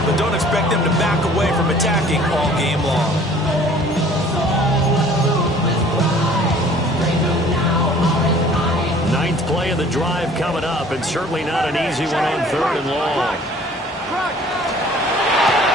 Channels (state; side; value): normal; both; correlation 0.52